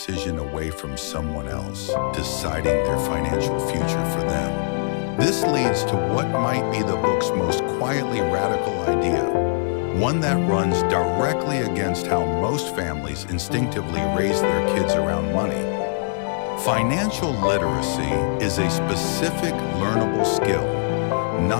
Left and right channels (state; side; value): silent; right; 64 dB below the other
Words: away from someone else deciding their financial future for them. This leads to what might be the book's most quietly radical idea, one that runs directly against how most families instinctively raise their kids around money. Financial literacy is a specific learnable skill,